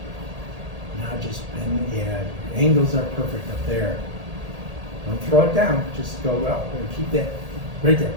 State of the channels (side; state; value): left; late; 1.8 ms